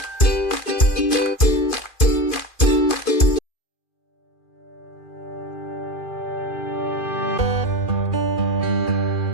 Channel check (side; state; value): right; late; 2.4 ms